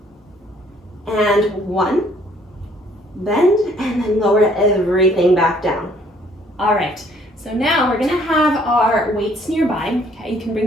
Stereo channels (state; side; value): normal; both; correlation 0.62